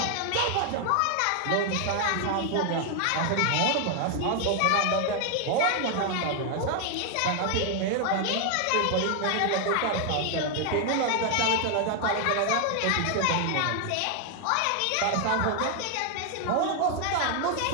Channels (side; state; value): both; different; correlation 0.00